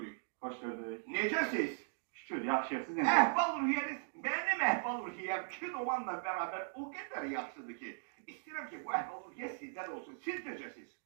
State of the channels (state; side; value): silent; left; digital silence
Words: Hoş gördük. Necəsiz? Şükür, yaxşıyıq. Siz necə? Əhval ruhiyyəniz, mənim əhval ruhiyyəm kinomanla beraber o kadar yaxşıdır ki, istəyirəm ki, bu əhval ruhiyyə sizdən olsun. Siz necəsiz?